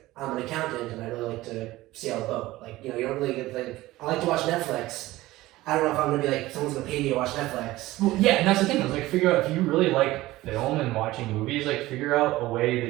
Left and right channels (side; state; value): left; quieter; 17.6 dB